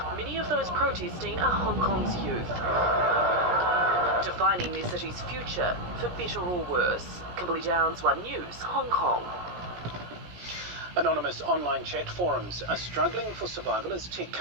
Many of those protesting are Hong Kong's youth, defining their city's future for better or worse. Kimberly Downs, One News, Hong Kong. Anonymous online chat forums are struggling for survival as tech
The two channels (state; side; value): late; left; 17 ms